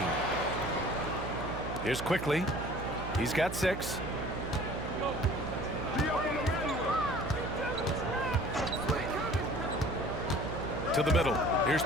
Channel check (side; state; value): right; noise; hum, 7 dB below the sound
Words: Here's Quickly. He's got 6. To the middle. Here's